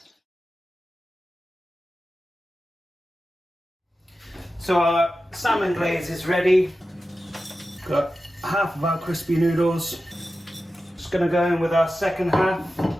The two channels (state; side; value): normal; both; correlation 0.93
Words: So our salmon glaze is ready. Got half of our crispy noodles. Just gonna go in with our second half.